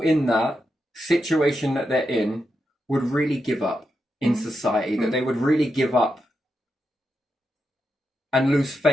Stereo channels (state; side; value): normal; both; correlation 0.86